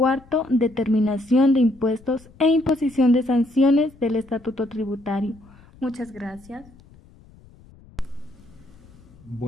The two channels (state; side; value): noise; left; rumble, 25 dB below the sound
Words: determinación de impuestos e imposición de sanciones del Estatuto Tributario. Muchas gracias.